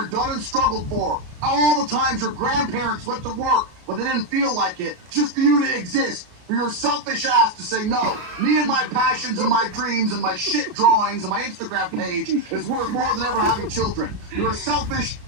done and struggled for. All the times your grandparents went to work but they didn't feel like it, just for you to exist. For your selfish ass to say no. Me and my passions and my dreams and my shit drawings and my Instagram page is worth more than ever having children. You're a selfish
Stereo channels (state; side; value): late; left; 34 ms